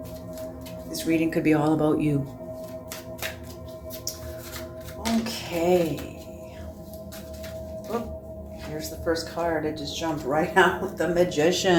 This reading could be all about you. Okay. Oh, here's the first card. It just jumped right out. The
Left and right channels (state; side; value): identical; both; correlation 1.00